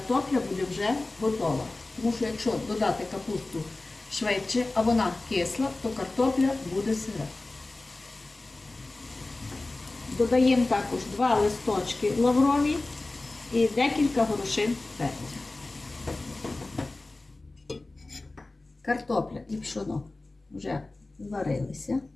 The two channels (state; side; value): quieter; right; 3.1 dB